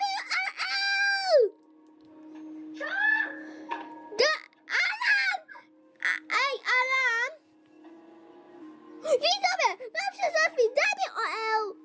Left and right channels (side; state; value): both; identical; correlation 1.00